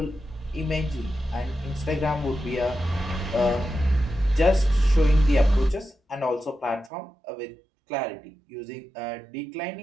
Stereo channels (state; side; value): drops out; left; at 6.9 s